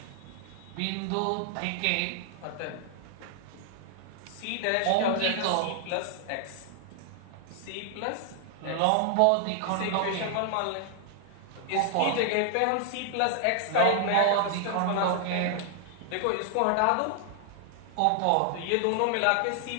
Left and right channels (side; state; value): both; different; correlation 0.00